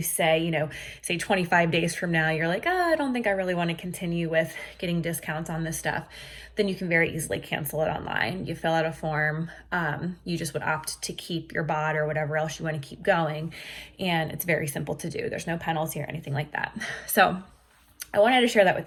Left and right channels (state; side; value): identical; both; correlation 1.00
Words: say 25 days from now, you're like, I don't think I really want to continue with getting discounts on this stuff. Then you can very easily cancel it online. You fill out a form. You just would opt to keep your bod or whatever else you want to keep going. And it's very simple to do. There's no penalty or anything like that. So I wanted to share that